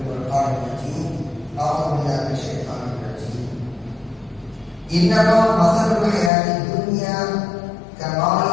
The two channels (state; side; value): drops out; right; at 6.3 s